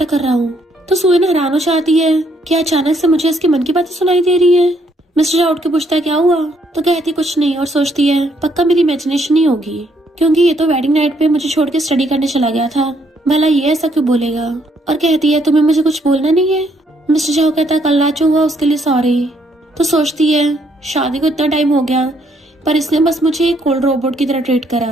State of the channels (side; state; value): both; normal; correlation 0.70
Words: कर रहा हूँ। तो सोयन हैरान हो जाती है कि अचानक से मुझे इसके मन की बातें सुनाई दे रही है। मिस्टर शाह उठ के पूछता है क्या हुआ, तो कहती कुछ नहीं और सोचती है पक्का मेरी इमेजिनेशन ही होगी, क्योंकि ये तो वेडिंग नाइट पे मुझे छोड़ के स्टडी करने चला गया था, भला ये ऐसा क्यों बोलेगा। और कहती है तुम्हें मुझे कुछ बोलना नहीं है। मिस्टर शाह कहता है कल रात जो हुआ उसके लिए सॉरी। तो सोचती है शादी को इतना टाइम हो गया पर इसने बस मुझे एक कोल्ड रोबोट की तरह ट्रीट